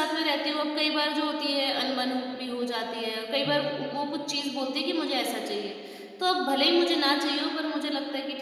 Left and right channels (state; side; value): identical; both; correlation 1.00